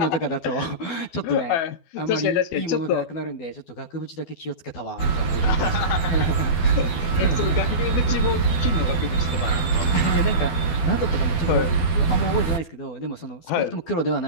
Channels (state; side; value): late; right; 12 ms